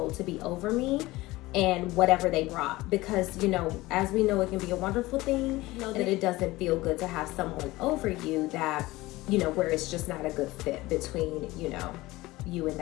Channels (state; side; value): quieter; right; 19.4 dB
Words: to be over me and whatever they brought, because as we know, it can be a wonderful thing, that it doesn't feel good to have someone over you that where it's just not a good fit between you and